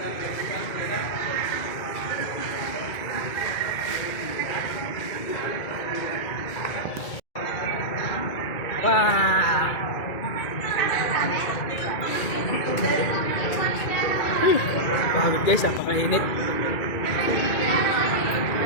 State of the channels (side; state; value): right; late; 2.4 ms